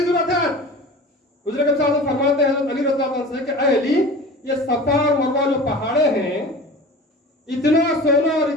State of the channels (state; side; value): normal; both; correlation 0.37